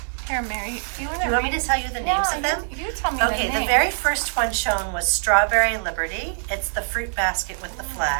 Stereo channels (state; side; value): silent; left; digital silence